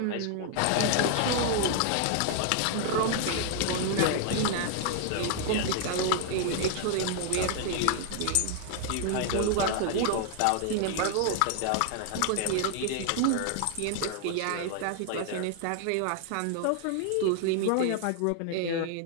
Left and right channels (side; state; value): both; different; correlation 0.00